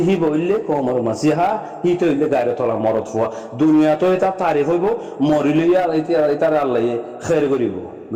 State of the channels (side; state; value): both; identical; correlation 1.00